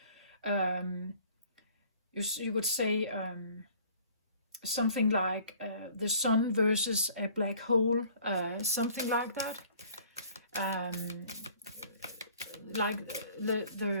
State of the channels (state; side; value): inverted; both; correlation -0.53